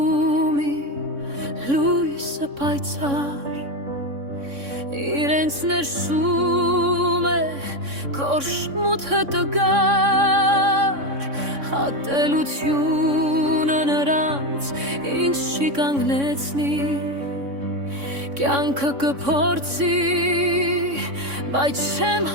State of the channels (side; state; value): left; late; 3.6 ms